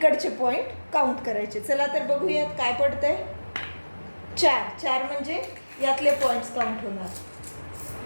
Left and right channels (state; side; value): inverted; both; correlation -1.00